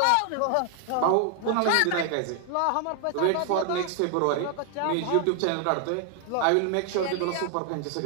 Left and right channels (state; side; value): different; both; correlation 0.00